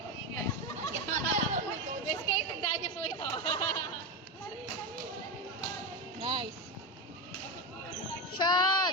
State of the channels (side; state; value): both; normal; correlation 0.15